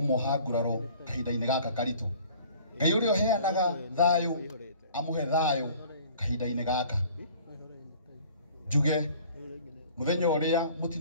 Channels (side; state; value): both; inverted; correlation -0.50